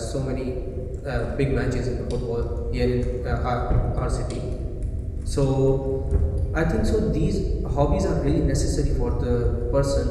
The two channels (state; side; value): identical; both; correlation 1.00